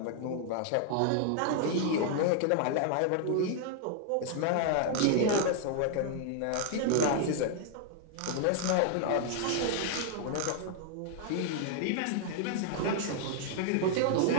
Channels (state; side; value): different; both; correlation 0.00